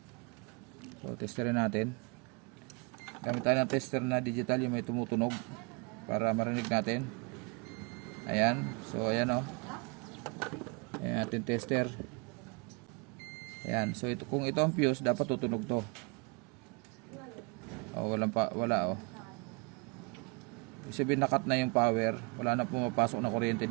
So, testerin natin. Gamit tayo ng tester na digital, yung may tumutunog, para marinig natin. Ayan. So ayan o. Ayan ating tester. Ayan. So ito, kung ito ang fuse, dapat tutunog to. O wala o. Sabihin nakat na yung power. Wala na pumapasok na kuryente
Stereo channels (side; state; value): left; quieter; 31.0 dB